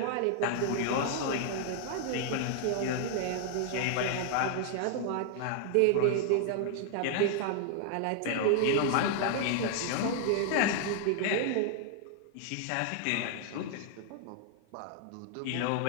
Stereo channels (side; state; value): both; different; correlation 0.00